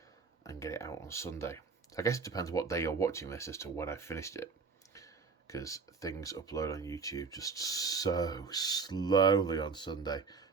and get it out on Sunday. I guess it depends what day you're watching this as to when I finished it, because things upload on YouTube just so slowly on Sunday.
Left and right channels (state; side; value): quieter; left; 5.0 dB